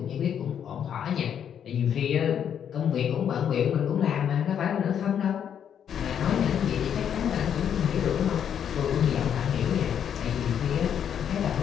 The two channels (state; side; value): quieter; right; 8.7 dB